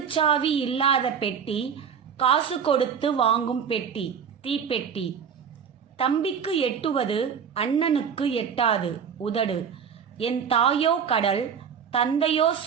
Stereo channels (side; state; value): left; quieter; 7.2 dB